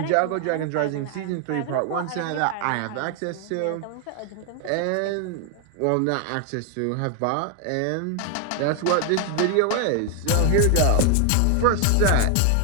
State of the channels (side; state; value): both; different; correlation 0.00